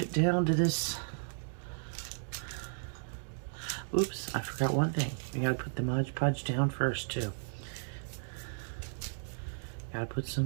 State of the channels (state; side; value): silent; left; digital silence